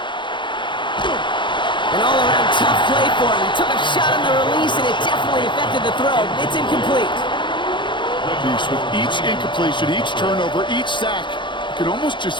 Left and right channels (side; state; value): right; late; 0.23 ms